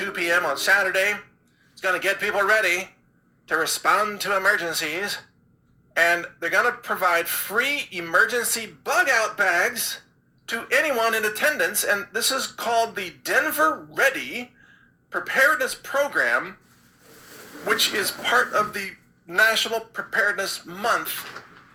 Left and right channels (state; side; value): identical; both; correlation 1.00